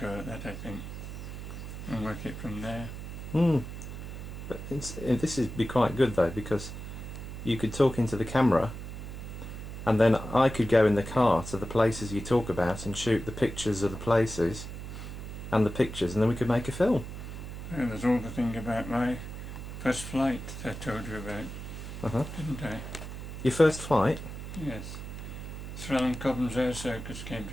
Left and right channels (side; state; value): right; noise; hum, 9 dB below the sound